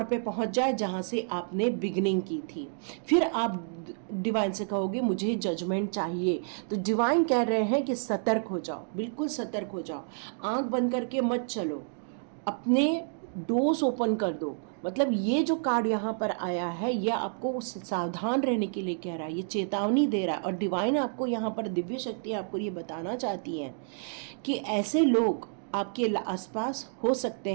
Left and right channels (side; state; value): left; silent; digital silence